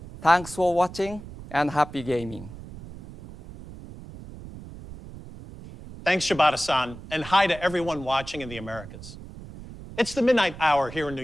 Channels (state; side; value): noise; right; rumble, 15 dB below the sound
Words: Thanks for watching and happy gaming. Thanks, Shibata-san, and hi to everyone watching in the Americas. It's the midnight hour here in New